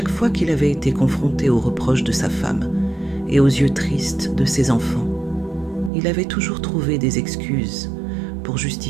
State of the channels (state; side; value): drops out; left; at 5.9 s